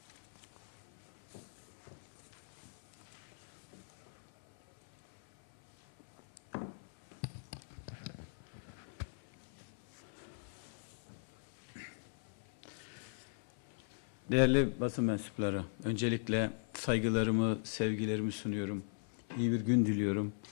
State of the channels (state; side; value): silent; right; 51 dB below the other